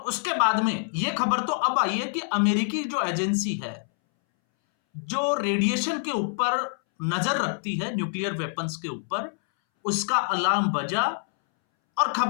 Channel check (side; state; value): right; silent; 61 dB below the other